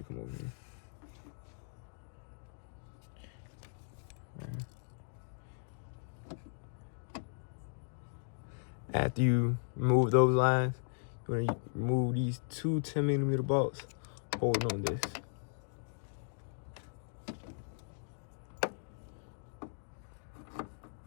come over here. After you remove those lines, you're going to remove these two 10mm bolts holding on this.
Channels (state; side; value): silent; right; digital silence